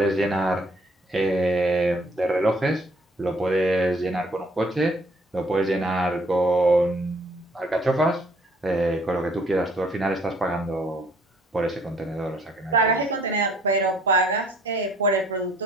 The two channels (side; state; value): both; normal; correlation 0.61